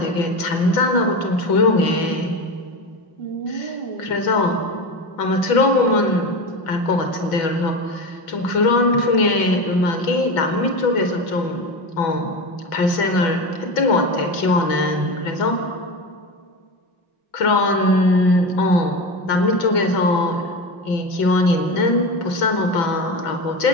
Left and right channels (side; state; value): right; late; 6.1 ms